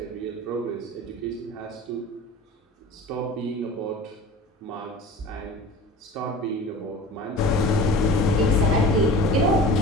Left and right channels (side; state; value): both; normal; correlation 0.38